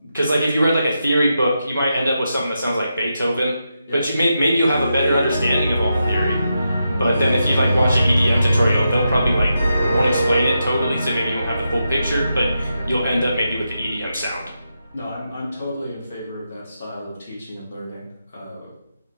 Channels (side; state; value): both; inverted; correlation -0.86